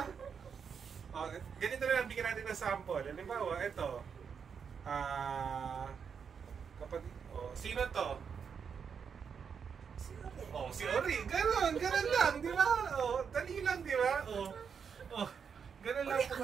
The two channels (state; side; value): quieter; left; 6.6 dB